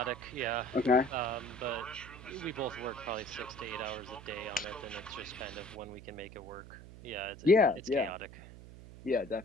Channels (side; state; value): right; noise; hum, 16 dB below the sound